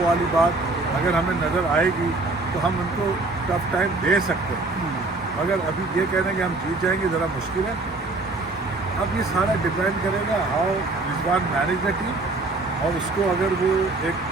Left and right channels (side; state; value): left; quieter; 3.2 dB